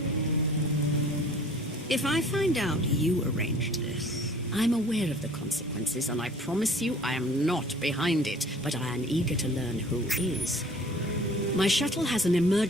If I find out you arranged this... I'm aware of the consequences, and I promise you I am not behind it, but I am eager to learn who is. My shuttle has an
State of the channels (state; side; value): normal; both; correlation 0.50